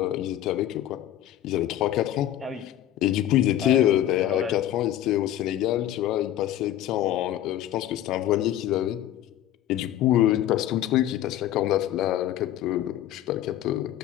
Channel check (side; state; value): right; quieter; 12.4 dB